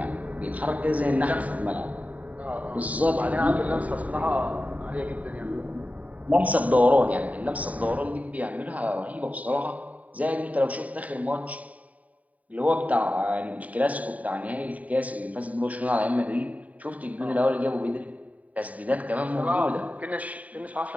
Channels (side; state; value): left; late; 0.070 ms